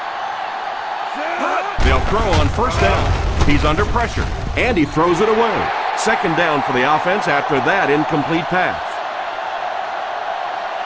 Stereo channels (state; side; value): identical; both; correlation 1.00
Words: They'll throw on first down. He's under pressure, and he throws it away. 2nd down for the offense after that incomplete pass.